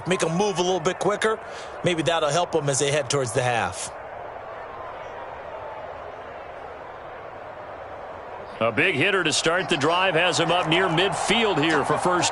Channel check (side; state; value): both; identical; correlation 1.00